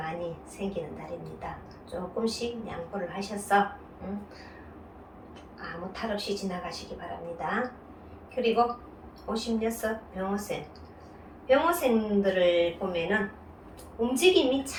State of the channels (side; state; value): both; identical; correlation 1.00